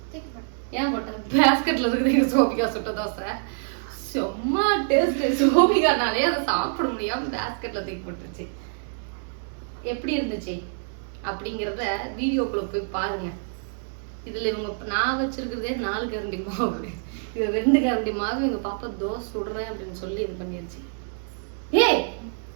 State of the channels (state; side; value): silent; left; 61 dB below the other